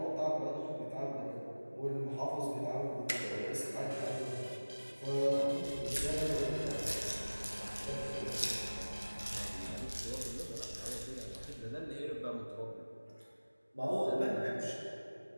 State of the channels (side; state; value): both; inverted; correlation -1.00